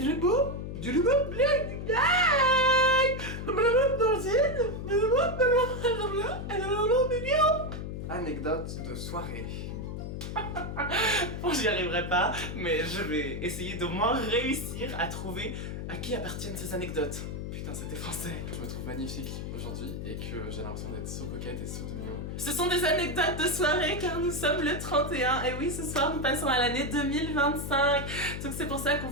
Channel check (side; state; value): left; noise; hum, 6 dB below the sound